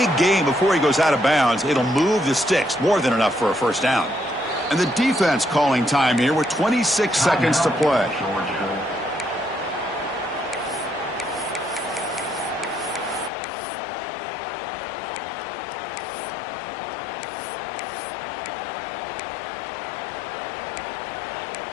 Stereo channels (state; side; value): drops out; right; at 13.3 s